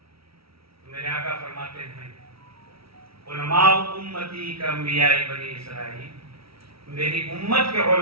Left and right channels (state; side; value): late; left; 0.75 ms